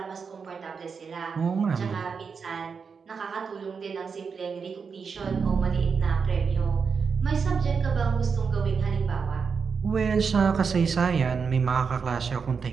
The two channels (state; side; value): quieter; left; 5.7 dB